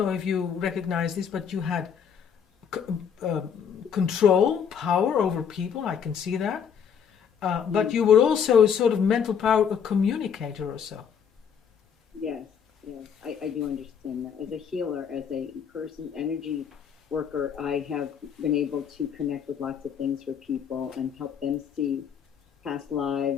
if you recognize this, but you had control, power over people. I can see that. But you were also sort of mental power, a communicator or so. Yes, I do understand that. As a healer, as a person, energy worker, I have been able to connect with lots of things for people and help them see past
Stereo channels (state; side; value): quieter; right; 7.5 dB